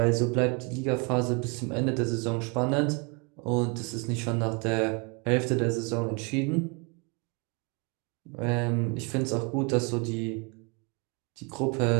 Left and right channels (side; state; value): left; quieter; 32.5 dB